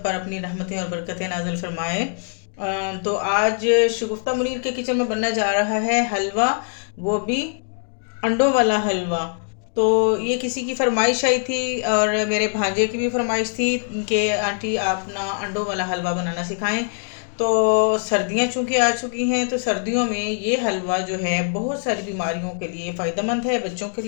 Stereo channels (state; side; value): silent; right; 64 dB below the other